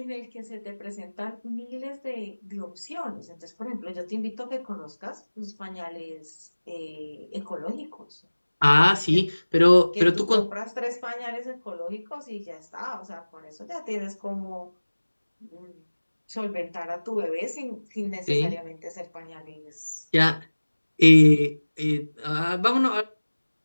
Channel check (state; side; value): inverted; both; correlation -1.00